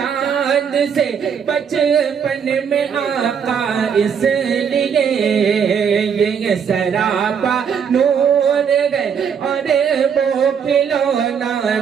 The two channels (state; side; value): quieter; left; 7.1 dB